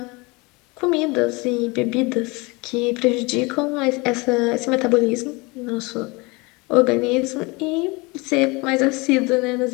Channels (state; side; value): quieter; right; 26.0 dB